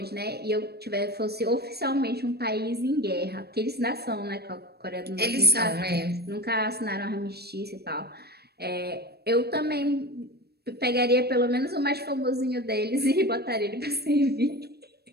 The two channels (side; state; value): left; late; 0.47 ms